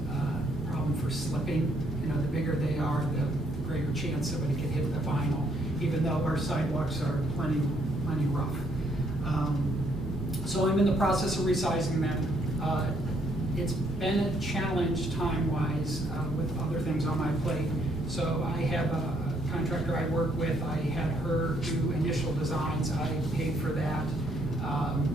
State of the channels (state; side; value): normal; both; correlation 0.70